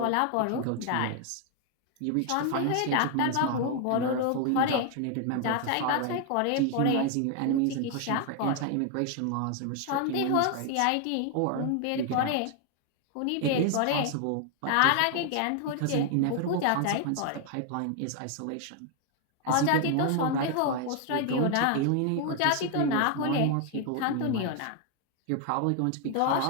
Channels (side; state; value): both; different; correlation 0.00